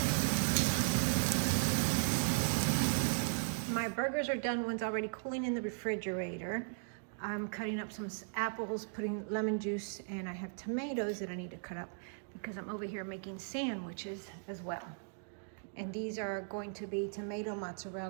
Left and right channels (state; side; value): silent; left; digital silence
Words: My burgers are done. One's already cooling in the refrigerator. I'm cutting up some apples, putting lemon juice, and I have tomatoes that I need to cut up because I'm over here making sandwiches as well. And these are going to be tomato,